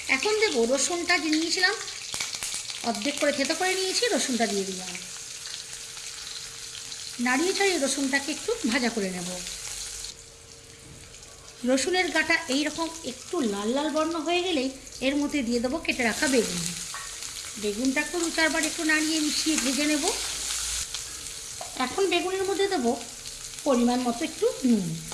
এখন দেবো রসুনটা যে নিয়েছিলাম, অর্ধেক করে থেতো করে নিয়েছি, রসুনটা দিয়ে দিলাম। নাড়িয়ে ছাড়িয়ে রসুনটাকে একটু ভাজা করে নেব। রসুনের গাটা এইরকম একটু লাল লাল বর্ণ হয়ে গেলেই এর মধ্যে দিয়ে দেবো কেটে রাখা বেগুন। বেগুনটাকে 2-4 বার একটু নাড়িয়ে মিশিয়ে ভেজে নেব। এখন বেগুনের মধ্যে দেবো পরিমাণ মতো একটু নুন।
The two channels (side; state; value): both; identical; correlation 1.00